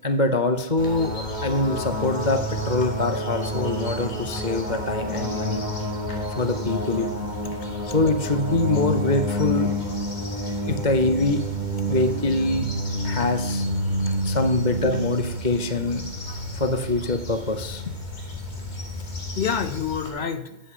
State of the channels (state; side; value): late; left; 2.2 ms